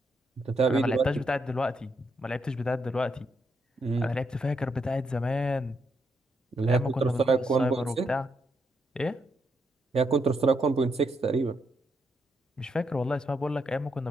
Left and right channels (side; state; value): both; normal; correlation 0.79